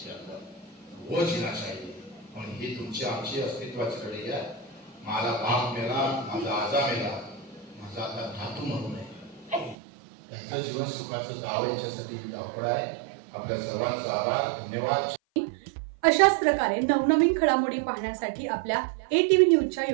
के अंदर, वो जीना चाहिए. म्हणून ही तुमची आमची अस्तित्वाची लढाई आहे. माझा बाप मेला, माझा आजा मेला, माझा आता धातू म्हणून आहे. त्याचं जीवन सुखाचं जावं याच्यासाठी धावपळ आहे. आपल्या सर्वांचा आभार, धन्यवाद. अशाच प्रकारे नवनवीन घडामोडी पाहण्यासाठी आपल्या ATV न्यूजच्या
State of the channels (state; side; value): drops out; left; at 9.8 s